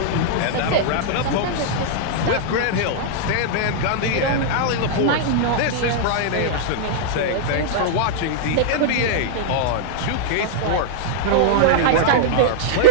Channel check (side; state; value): both; different; correlation -0.01